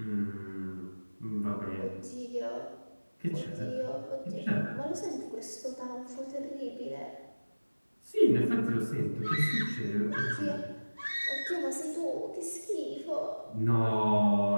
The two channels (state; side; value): inverted; both; correlation -1.00